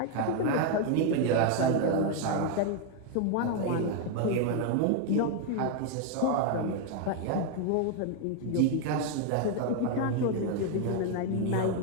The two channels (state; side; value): different; both; correlation 0.00